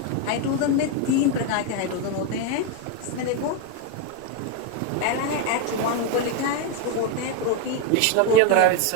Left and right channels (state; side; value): different; both; correlation 0.02